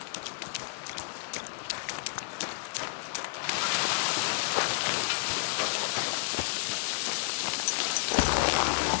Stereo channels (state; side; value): silent; right; 57 dB below the other